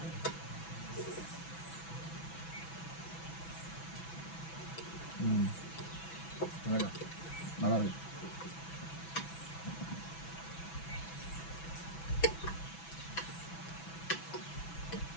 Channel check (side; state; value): right; late; 6.0 ms